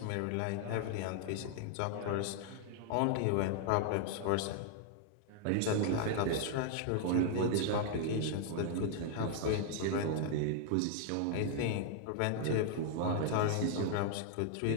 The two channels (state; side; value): different; both; correlation 0.00